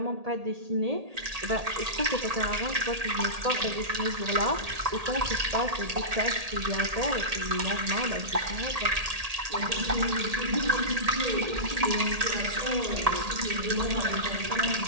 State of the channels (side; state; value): left; late; 1.8 ms